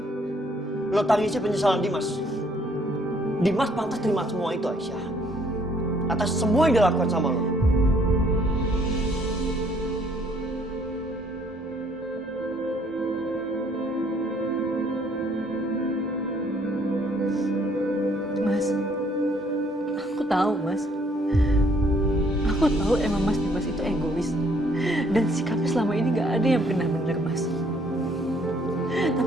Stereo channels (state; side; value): normal; both; correlation 0.64